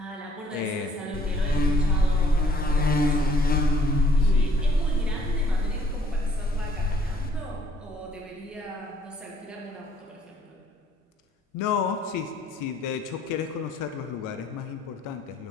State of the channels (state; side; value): normal; both; correlation 0.62